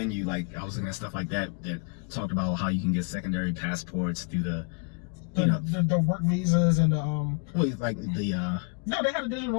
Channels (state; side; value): quieter; right; 37.1 dB